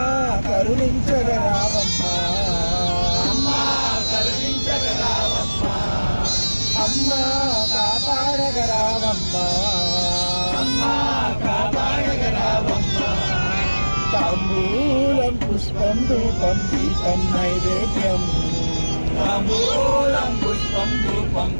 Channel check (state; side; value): inverted; both; correlation -1.00